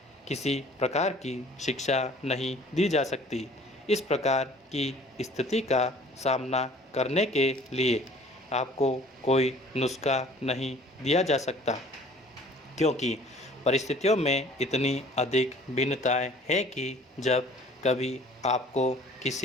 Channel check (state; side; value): normal; both; correlation 0.52